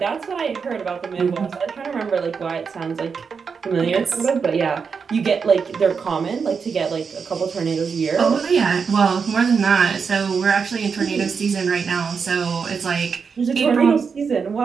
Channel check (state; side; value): quieter; left; 5.8 dB